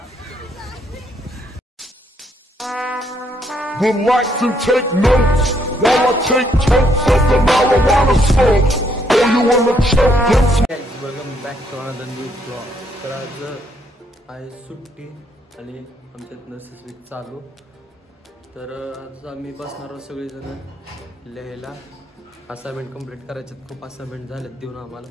Would like to take notes while I take totes of the marijuana smoke. Or you wanna choke them? Welcome back to another new vlog. तर आज आहे सुट्टी आणि आमच्यात नसेस वीक चालू. तर आज आम्ही बसणार आहोत सगळेजण लिहायला. असाइनमेंट कंप्लीट करायचे. खूप असाइनमेंट झालेत देऊन आम्हाला.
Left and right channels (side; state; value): both; normal; correlation 0.71